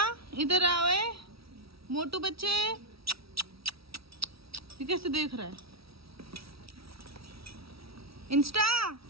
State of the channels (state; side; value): late; left; 0.76 ms